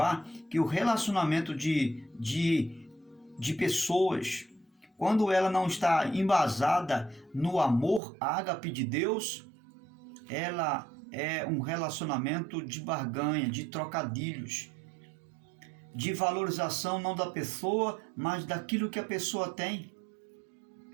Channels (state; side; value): drops out; left; at 8.0 s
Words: que o relacionamento de pessoas, quando ela não está embasada no amor ágape de Deus, ela é um relacionamento de barganha, de trocadilhos, de valorização não da pessoa, mas daquilo que a pessoa tem.